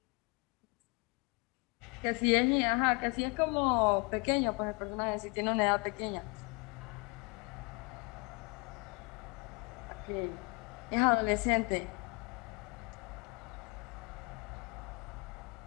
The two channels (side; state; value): right; quieter; 30.7 dB